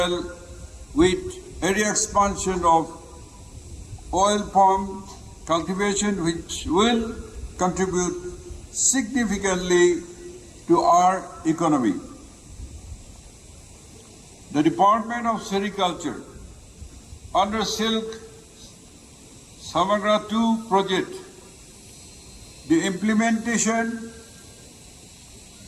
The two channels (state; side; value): identical; both; correlation 1.00